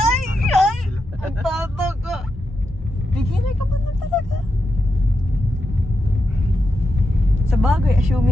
Ay! Ang tata ka. Beginner ka man lang talaga. Sa bagay,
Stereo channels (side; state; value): both; normal; correlation 0.87